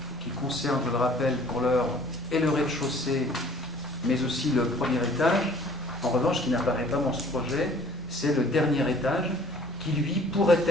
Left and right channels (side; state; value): both; normal; correlation 0.53